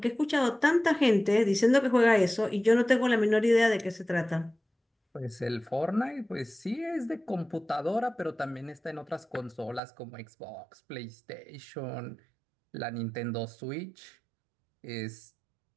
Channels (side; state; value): left; drops out; at 9.8 s